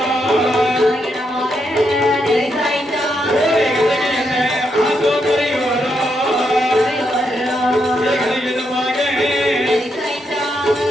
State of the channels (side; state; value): both; normal; correlation 0.80